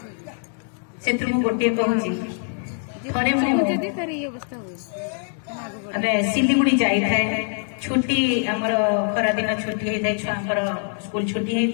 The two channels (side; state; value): right; silent; 59 dB below the other